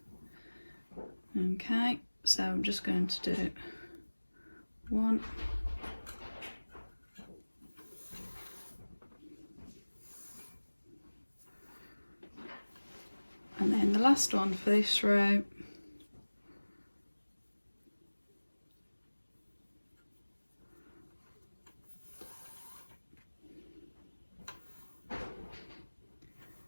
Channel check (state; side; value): inverted; both; correlation -1.00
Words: Okay, so I'm just going to do 1, and then the last one for this row.